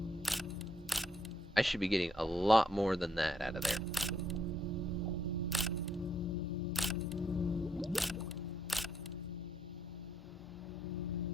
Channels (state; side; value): normal; both; correlation 0.73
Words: I should be getting a lot more than that out of there.